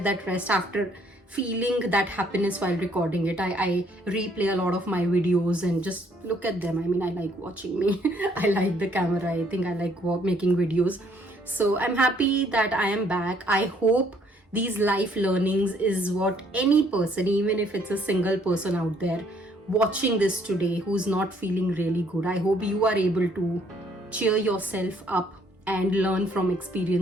that rest, after feeling that happiness while recording it. I replay a lot of my videos and just look at them. I mean, I like watching me. I like the camera. I think I like making videos. So I'm happy that I am back. I hope these life learnings is what any person, even if it's a single person out there watching this today who's not feeling really good, I hope you are able to cheer yourself up and learn from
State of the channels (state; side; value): normal; both; correlation 0.65